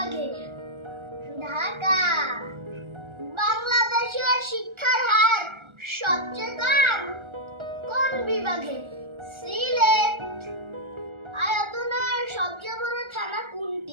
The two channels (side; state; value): left; late; 1.4 ms